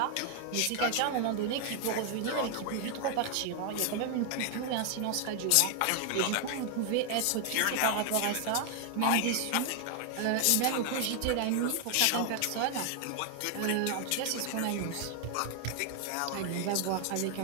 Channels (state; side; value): different; both; correlation 0.00